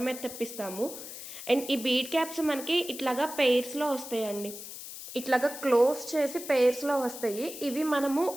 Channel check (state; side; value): noise; left; hiss, 11 dB below the sound